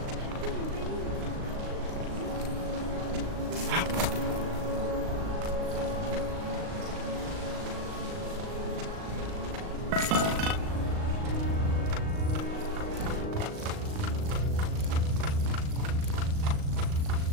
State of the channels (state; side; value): late; left; 38 ms